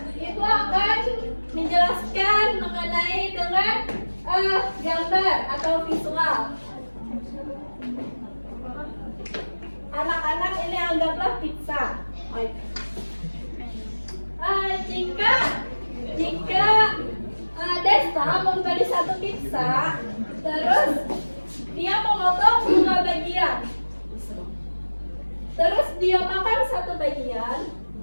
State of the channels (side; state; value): both; inverted; correlation -1.00